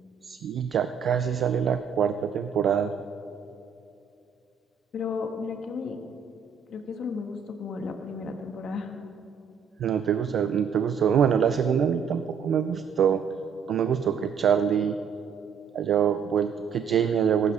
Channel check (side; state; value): left; quieter; 6.7 dB